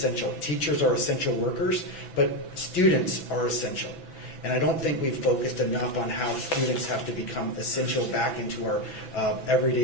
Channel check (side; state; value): right; late; 6.0 ms